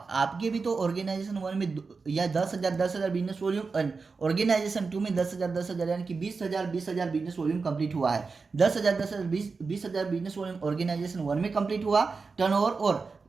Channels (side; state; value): left; quieter; 4.6 dB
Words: आपके भी तो ऑर्गेनाइजेशन 1 में या 10,000 बिजनेस वॉल्यूम, ऑर्गेनाइजेशन 2 में 10,000 यानी कि 20,000 बिजनेस वॉल्यूम कंप्लीट हुआ है। 10,000 20,000 बिजनेस वॉल्यूम ऑर्गेनाइजेशन 1 में कंप्लीट हुआ टर्नओवर, और